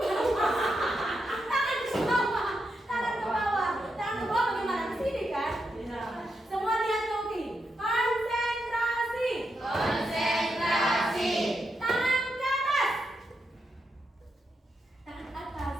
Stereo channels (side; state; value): both; normal; correlation 0.84